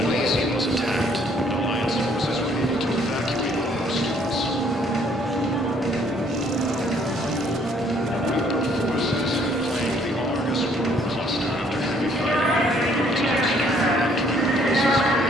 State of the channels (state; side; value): normal; both; correlation 0.64